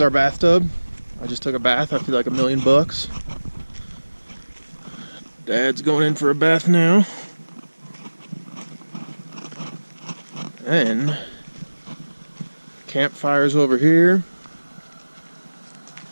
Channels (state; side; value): inverted; both; correlation -1.00